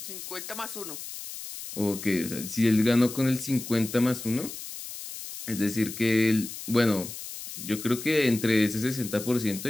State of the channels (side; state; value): left; noise; hiss, 10 dB below the sound